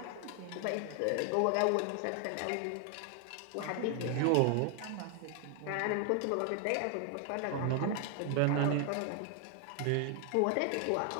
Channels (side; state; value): both; different; correlation 0.00